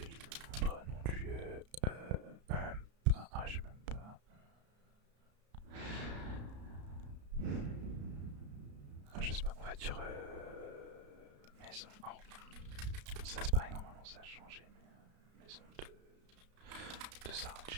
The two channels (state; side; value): late; left; 33 ms